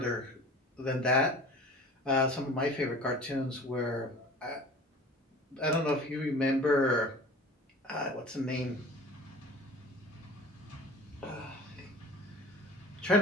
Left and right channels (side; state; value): both; normal; correlation 0.42